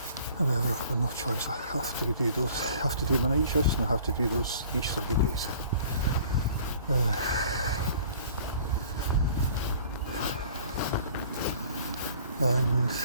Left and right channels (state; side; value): inverted; both; correlation -0.51